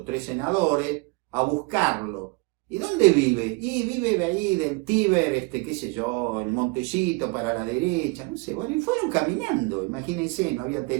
tres senadores a buscarlo. ¿Y dónde vive? Y vive ahí del Tíber, qué sé yo, en Montecito para la derecha, no sé. Bueno, y fueron caminando, imagínense, no había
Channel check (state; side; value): quieter; left; 27.4 dB